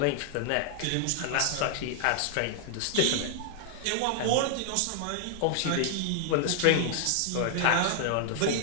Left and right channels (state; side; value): different; both; correlation -0.01